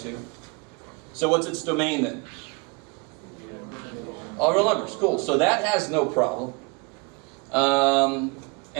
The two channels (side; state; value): left; quieter; 29.8 dB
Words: So what's its domain then? All real numbers, cool. So that has no problem.